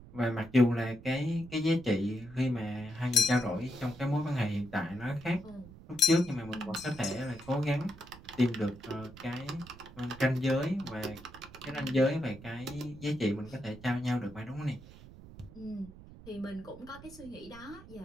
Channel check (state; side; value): noise; right; rumble, 18 dB below the sound